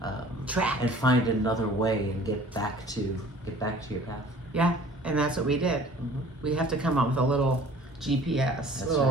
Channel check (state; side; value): normal; both; correlation 0.49